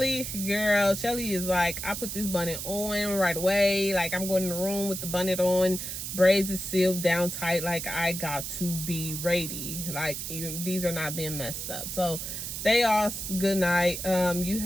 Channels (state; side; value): noise; right; hiss, 5 dB below the sound